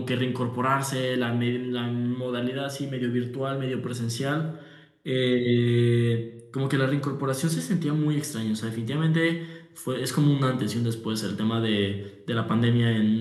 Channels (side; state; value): both; identical; correlation 1.00